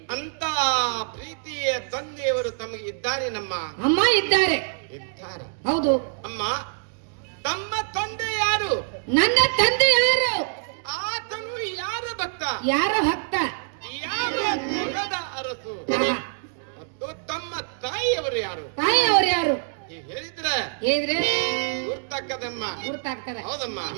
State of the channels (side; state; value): left; silent; digital silence